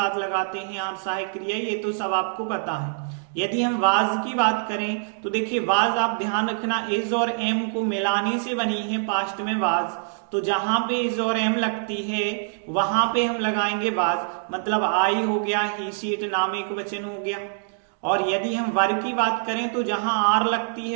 लगाते हैं आर सहायक क्रिया, ये तो सब आपको पता है। यदि हम वाज की बात करें तो देखिए, वाज आप ध्यान रखना इज और एम को मिलाने से बनी है पास्ट में वाज। तो जहां पे इज और एम लगती है वहां पे हम लगाएंगे वाज, मतलब आई हो गया, ही सी इट नाम एक वचन हो गया। और यदि हम वर की बात करें तो जहां आर लगती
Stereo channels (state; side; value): silent; left; digital silence